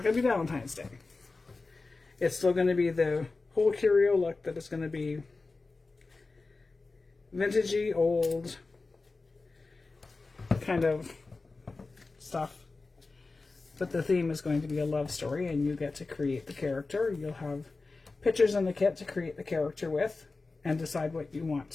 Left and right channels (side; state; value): right; quieter; 3.7 dB